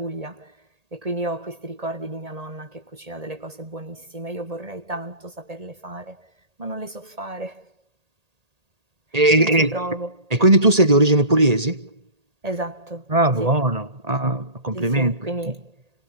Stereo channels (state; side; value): late; left; 1.8 ms